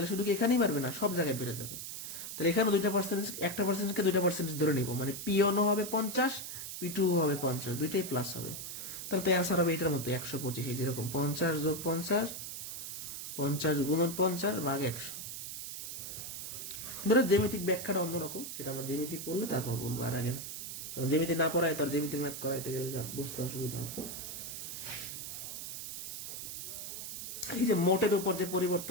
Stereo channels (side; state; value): right; noise; hiss, 7 dB below the sound